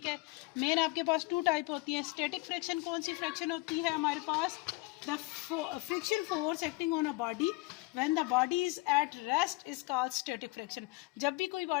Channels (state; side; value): quieter; right; 23.3 dB